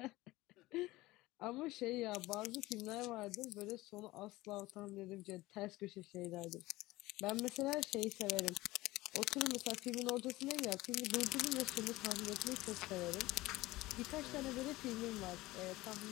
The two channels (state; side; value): quieter; right; 19.0 dB